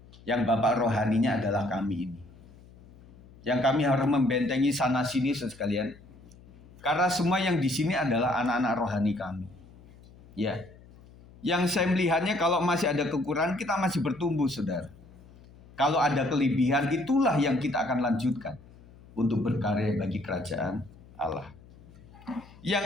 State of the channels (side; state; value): left; noise; hum, 23 dB below the sound